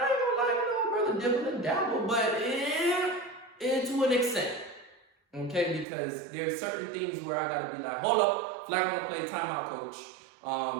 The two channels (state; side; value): drops out; left; at 5.9 s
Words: ain't gonna lie, brother, dibble and dabble, but to an extent. Okay, because there's certain things where I gotta be like, hold up, flag on the play, timeout, coach.